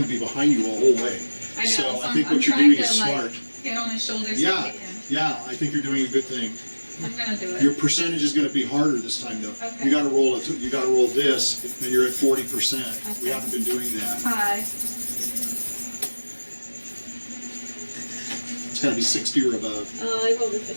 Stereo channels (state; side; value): inverted; both; correlation -1.00